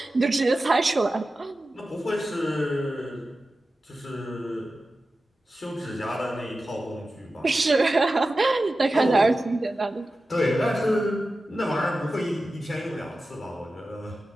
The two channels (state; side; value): normal; both; correlation 0.94